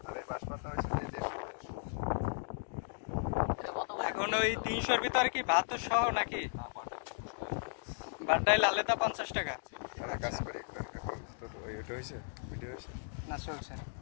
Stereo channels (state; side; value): silent; right; digital silence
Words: এখন ওই 300-র ভিতরে কি ভাত সহ নাকি? ভাত ডাইল আলাদা 50 টাকা না চলছে।